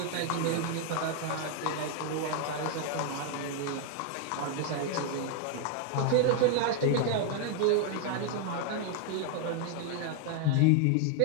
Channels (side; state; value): both; different; correlation 0.00